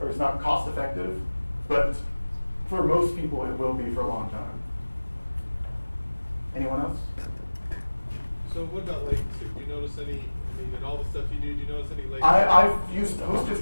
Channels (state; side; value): inverted; both; correlation -1.00